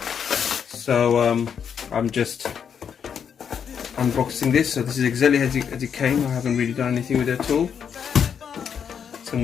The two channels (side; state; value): right; quieter; 7.5 dB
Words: So I'm just unboxing this. So this is exactly as it came. I haven't really done anything with it at all. So I'm